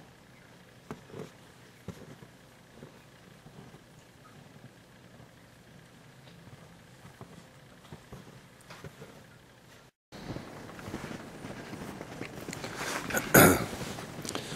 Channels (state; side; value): identical; both; correlation 1.00